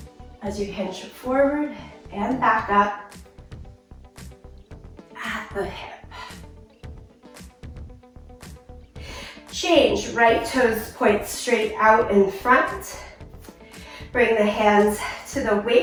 as you hinge forward and back up at the hip. Change, right toes point straight out in front. Bring the hands to the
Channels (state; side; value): identical; both; correlation 1.00